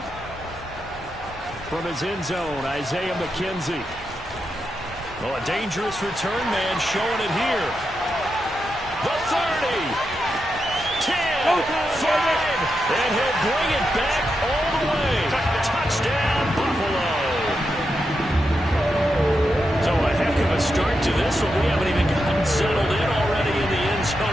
From his end zone, Isaiah McKenzie. Oh, a dangerous return man showing it here. The 30, 10, 5, and he'll bring it back all the way. Touchdown, Buffalo. So a heck of a start to this one. We haven't even gotten settled in already in the end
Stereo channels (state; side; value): normal; both; correlation 0.86